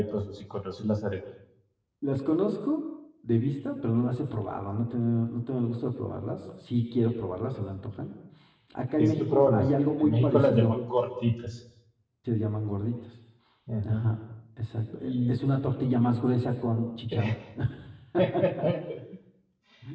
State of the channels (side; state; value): both; identical; correlation 1.00